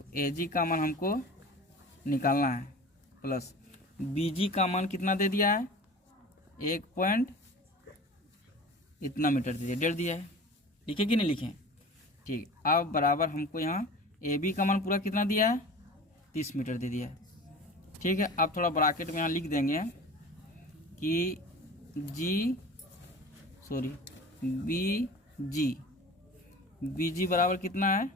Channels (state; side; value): normal; both; correlation 0.38